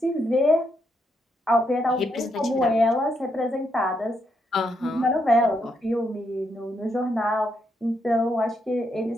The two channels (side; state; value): both; normal; correlation 0.79